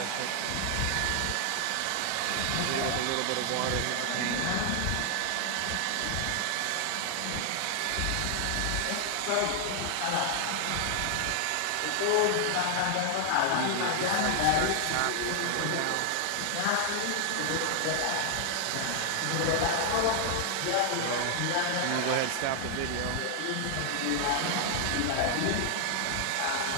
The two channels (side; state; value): both; different; correlation 0.00